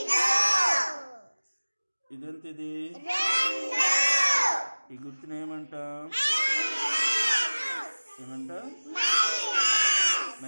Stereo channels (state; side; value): inverted; both; correlation -1.00